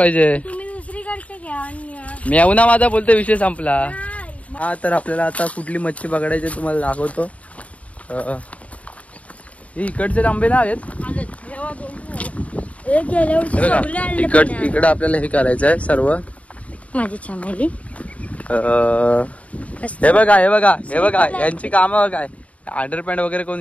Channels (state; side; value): late; right; 0.067 ms